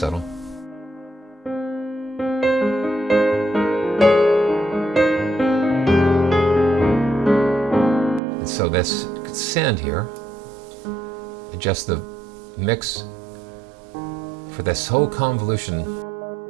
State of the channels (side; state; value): left; drops out; at 8.2 s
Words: And so let's send here, adjust the mix for this whole convolution.